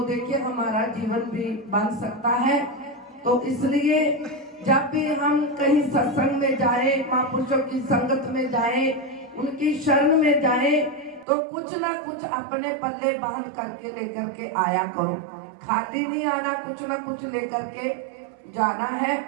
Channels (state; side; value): drops out; left; at 11.2 s